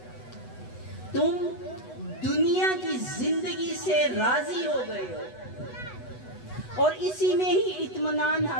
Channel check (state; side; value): late; right; 8.0 ms